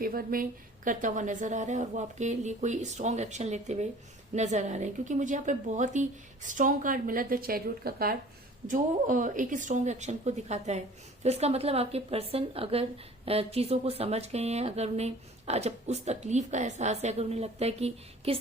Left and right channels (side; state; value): both; normal; correlation 0.48